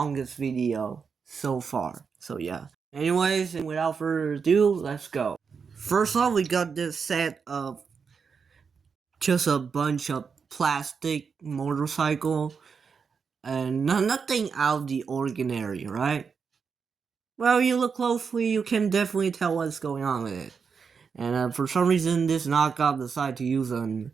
video so far. So yeah. Anyways, and without further ado, let's go. First off, we got this set of just a bunch of plastic motorcycle and nothing out of the ordinary, right? Well, you look closely, you can definitely tell what's going on with it. And for some reason, this knockoff decided to use an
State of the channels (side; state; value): left; quieter; 5.8 dB